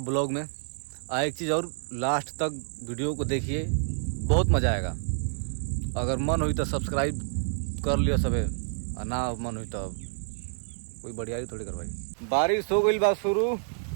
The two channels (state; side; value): silent; left; 59 dB below the other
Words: ब्लॉग में। एक चीज़ और, लास्ट तक वीडियो को देखिए, बहुत मज़ा आएगा। अगर मन हुई तो सब्सक्राइब कर लियो सबे, और ना मन हुई तो कोई बढ़िया थोड़ी करवाई। बारिश हो गई बा शुरू।